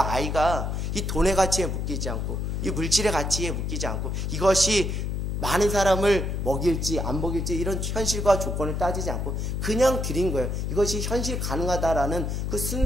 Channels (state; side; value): noise; left; hum, 1 dB below the sound